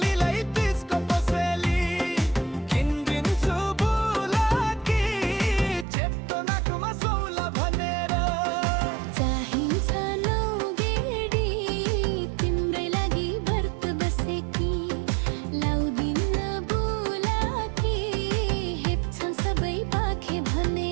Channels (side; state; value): left; drops out; at 5.9 s